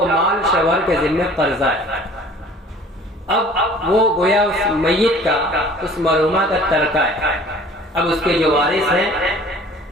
مال شوہر کے ذمہ قرضہ ہے، اب وہ گویا اس میت کا، اس مرحومہ کا ترکہ ہے۔ اب اس کے جو وارث ہیں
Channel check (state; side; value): normal; both; correlation 0.49